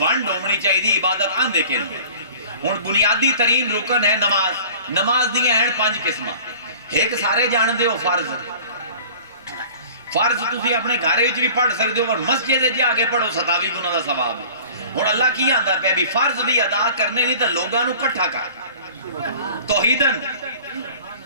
ہونی چاہیے. عبادت آندے کیوں؟ ہن بنیادی ترین رکن ہے نماز. نماز دی ہیں 5 قسماں. ایک سارے جاندے ہو فرض. فرض تسی اپنے گھر وچ بھی پڑھ سکدے ہو اور مسجد وچ جا کے پڑھو 27 گنا دا ثواب ہے. ہن اللہ کی آندا پیا بھی فرض بھی ادا کرنے نہیں تے لوگاں نو اکٹھا کر. توحیدن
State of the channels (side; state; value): both; inverted; correlation -0.45